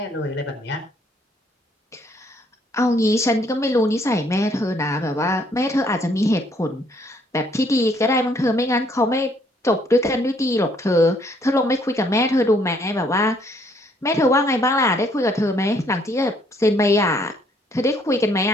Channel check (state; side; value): normal; both; correlation 0.66